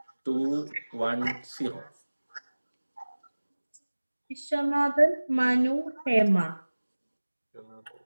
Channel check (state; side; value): inverted; both; correlation -1.00